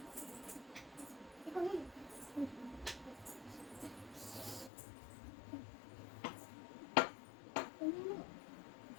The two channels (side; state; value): right; drops out; at 4.7 s